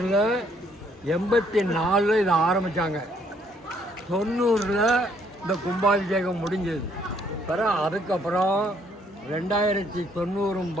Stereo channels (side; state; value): both; normal; correlation 0.67